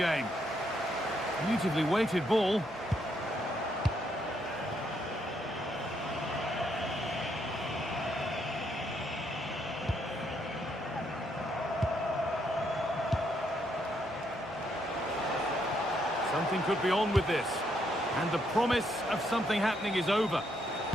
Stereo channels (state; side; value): normal; both; correlation 0.75